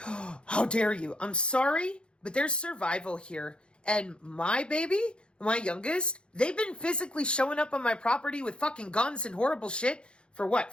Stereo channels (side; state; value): right; late; 0.055 ms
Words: How dare you? I'm sorry, but there's survival here. And my baby, my youngest, they've been physically showing up on my property with fucking guns and horrible shit for what,